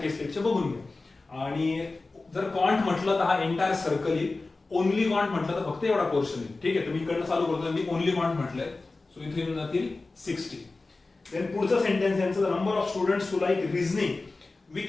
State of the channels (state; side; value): quieter; right; 3.5 dB